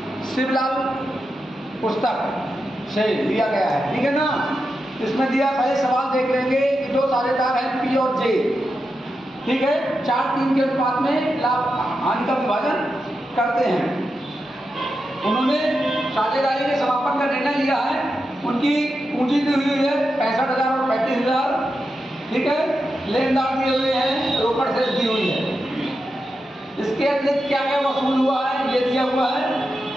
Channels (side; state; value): both; normal; correlation 0.88